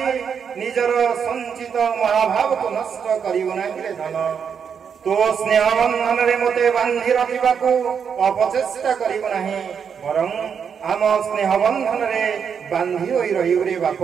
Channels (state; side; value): quieter; left; 7.0 dB